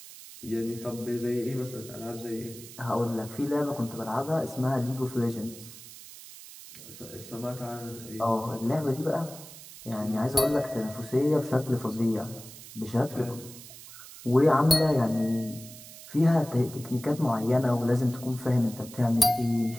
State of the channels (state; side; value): noise; right; hiss, 16 dB below the sound